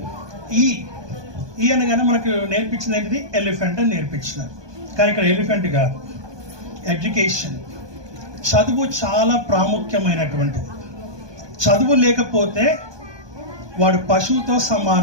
ఈ అనగానే మనకు నేర్పించింది ఏంటిది? ఎలిఫెంట్ అని నేర్పించినారు. కానీ ఇక్కడ ఎలిఫెంట్ కాదు, ఎడ్యుకేషన్. చదువు చాలా ప్రాముఖ్యమైనటువంటిది. చదువు లేకపోతే వాడు పశువుతో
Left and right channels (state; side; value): late; left; 1.2 ms